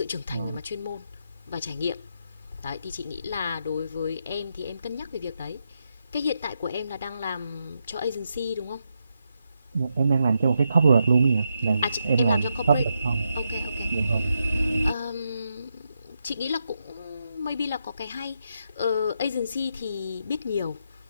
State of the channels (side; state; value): both; inverted; correlation -0.83